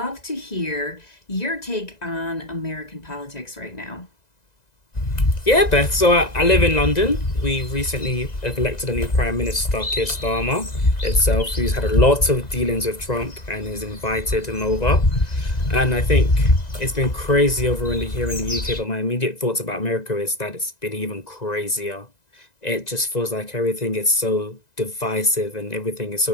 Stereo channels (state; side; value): late; right; 2.0 ms